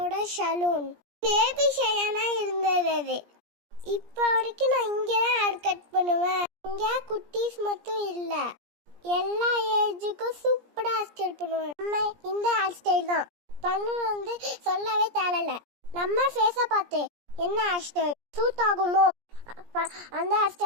சலூன். பேபி ஷையானா இருந்தது அது. இப்போ வரைக்கும் நான் இங்கே தான் ஹேர் கட் பண்ணுவேன். இங்கே குட்டீஸ் மட்டும் இல்லை, எல்லா ஏஜுக்கும் சூப்பராக ஹேர் ஸ்டைல் பண்ணுவேன். நம்ம இந்த ஹேர் ஸ்டைல் தான் பண்ணு சொல்லவே தேவையில்ல. நம்ம ஃபேஸை பார்த்து என்ன ஹேர் ஸ்டைல் சூட் ஆகுமோ அந்த ஹேர்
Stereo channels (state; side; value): late; left; 17 ms